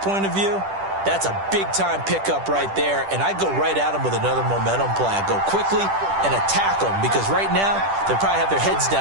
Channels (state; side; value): late; left; 10 ms